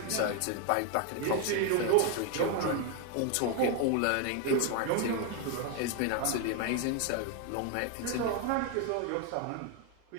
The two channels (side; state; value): both; different; correlation 0.01